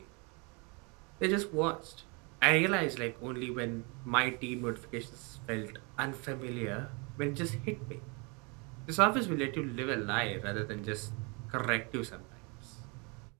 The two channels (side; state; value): left; quieter; 31.2 dB